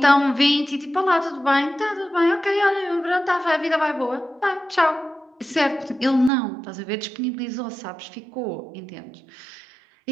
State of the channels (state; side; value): drops out; left; at 6.3 s